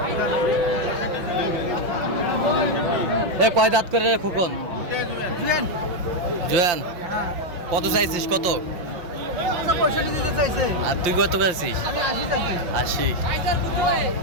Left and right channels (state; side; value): late; left; 5.7 ms